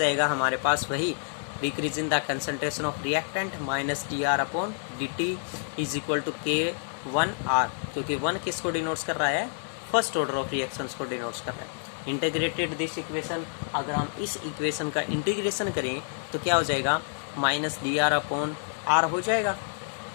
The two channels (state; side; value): silent; right; digital silence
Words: हमारे पास, वही decrease in the concentration of reactant minus d r upon d t is equal to k 1 are, क्योंकि 1 किसको डिनोट्स कर रहा है, फर्स्ट ऑर्डर ऑफ रिएक्शंस को डिनोट्स कर रहा है। इंटीग्रेटेड दिस इक्वेशन, अगर हम इस इक्वेशन का इंटीग्रेशन करें तो क्या हो जाएगा, minus d r upon r हो जाएगा,